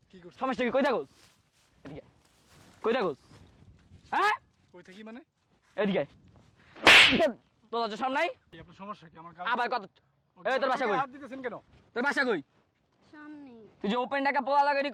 কি করছি? সমস্যা কি কই থাকস এদিকে কই থাকস হ্যাঁ কই থাকি মানে? এদিকে তোর লজ্জা শরম নাই কি আপনার সমস্যা কি? আমার আবার কত এই তোর বাসা কই হাত দিতেছেন কেন? তোর বাসা কই সামনে তুই যে ওপেন টাকা পোলা লাগাই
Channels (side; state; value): both; identical; correlation 1.00